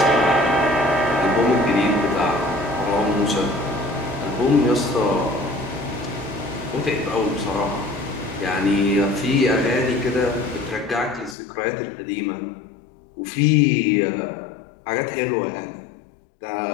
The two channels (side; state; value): right; drops out; at 11.4 s